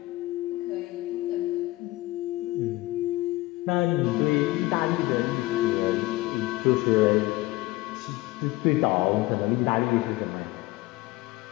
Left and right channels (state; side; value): quieter; right; 19.4 dB